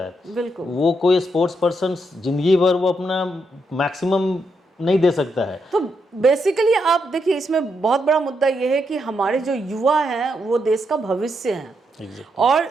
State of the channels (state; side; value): normal; both; correlation 0.80